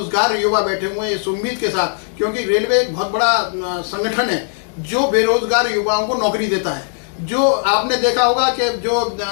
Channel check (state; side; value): silent; right; 66 dB below the other